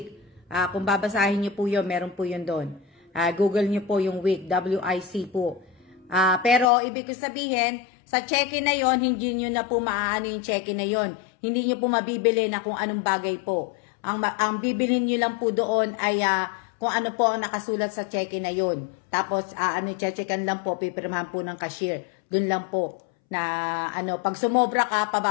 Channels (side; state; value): right; drops out; at 6.7 s